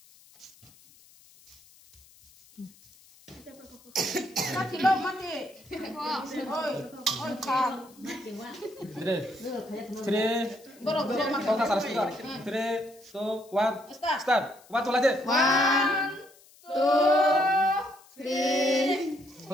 Mati lo mati. Oi kak. 3, Boro mati. kau tak salah juga. 3, 2, 1, start. Waktu lagi. 1, 2, 3,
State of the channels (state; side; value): noise; left; hiss, 26 dB below the sound